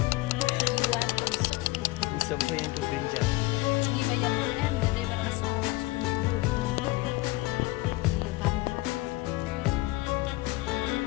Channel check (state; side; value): quieter; right; 19.9 dB